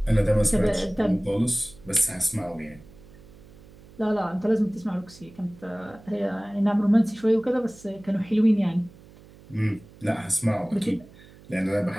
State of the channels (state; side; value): noise; right; hum, 23 dB below the sound